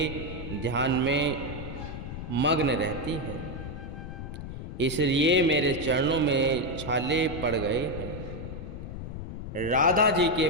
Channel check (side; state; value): left; noise; rumble, 8 dB below the sound